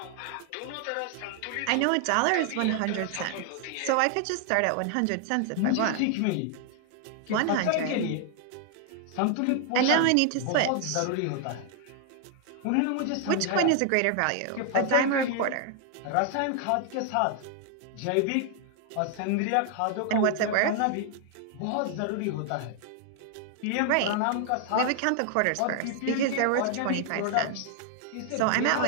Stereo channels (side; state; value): both; different; correlation 0.00